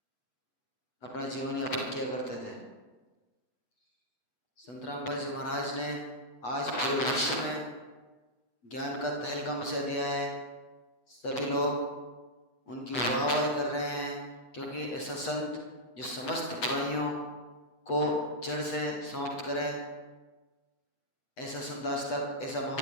अपना जीवन यापन किया करते थे। संत रामपाल जी महाराज ने आज पूरे विश्व में ज्ञान का तहलका मचा दिया है। सभी लोग उनकी वाहवाही कर रहे हैं क्योंकि ऐसा संत जो समस्त बुराइयों को जड़ से समाप्त करे, ऐसा संत आज तक, ऐसा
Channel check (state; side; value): late; right; 8.1 ms